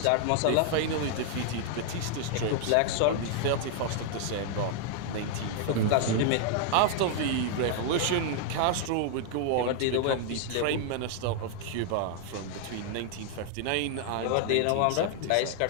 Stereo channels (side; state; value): both; different; correlation 0.00